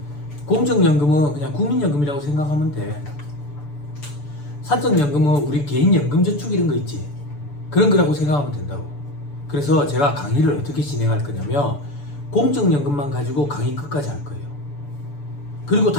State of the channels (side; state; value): right; late; 6.9 ms